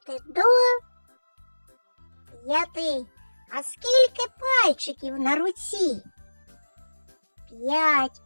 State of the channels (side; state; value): both; inverted; correlation -1.00